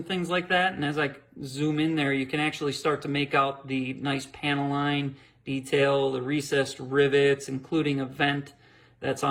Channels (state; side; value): identical; both; correlation 1.00